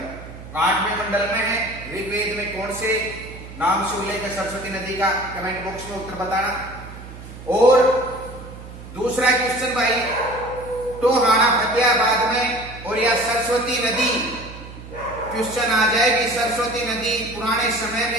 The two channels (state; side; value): noise; right; hum, 14 dB below the sound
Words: 8वें मंडल में है, ऋग्वेद में कौन से नाम से उल्लेख है सरस्वती नदी का, कमेंट बॉक्स में उत्तर बताना। और दूसरा क्वेश्चन भाई, टोहाना फतेहाबाद में और या सरस्वती नदी, क्वेश्चन आ जाए कि सरस्वती नदी पुराने समय